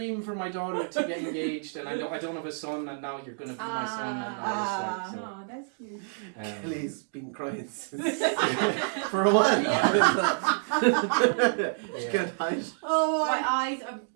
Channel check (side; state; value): left; silent; digital silence